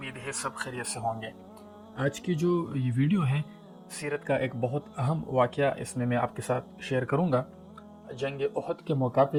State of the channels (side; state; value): both; identical; correlation 1.00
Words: है सब खैरियत से होंगे। आज की जो ये वीडियो है सीरत का एक बहुत अहम वाक़या इसमें मैं आपके साथ शेयर करूंगा। जंग उहद के मौका